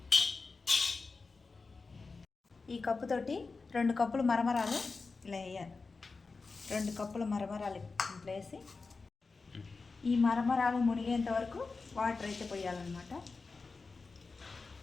ఈ కప్పుతోటి 2 కప్పులు మరమరాలు ఇలా వేయాలి. 2 కప్పుల మరమరాలు ఇట్లా వేసి ఈ మరమరాలు మునిగేంత వరకు వాటర్ అయితే పోయాలన్నమాట.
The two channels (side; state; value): right; quieter; 4.2 dB